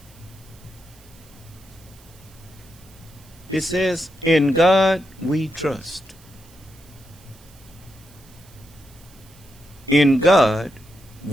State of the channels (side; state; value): right; noise; hiss, 26 dB below the sound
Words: It says, in God we trust. In God